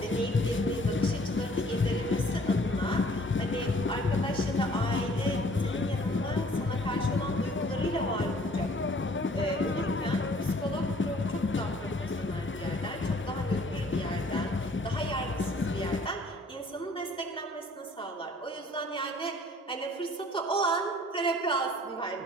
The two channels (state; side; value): normal; both; correlation 0.56